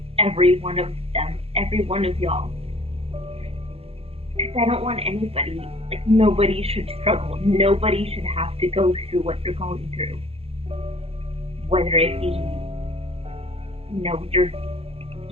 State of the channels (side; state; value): left; late; 0.29 ms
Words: every one of them, every one of y'all. Because I don't want anybody, nobody should struggle. Nobody should have to go through what they're going through. Whether it be,